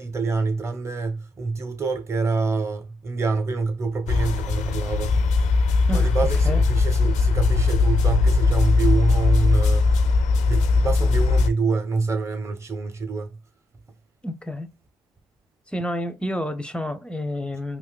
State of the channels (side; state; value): both; normal; correlation 0.83